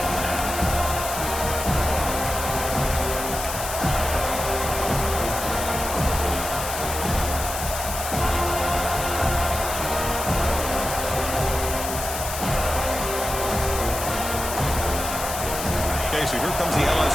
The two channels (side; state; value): left; noise; hiss, 6 dB below the sound